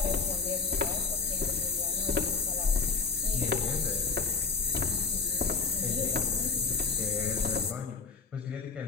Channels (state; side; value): quieter; right; 4.8 dB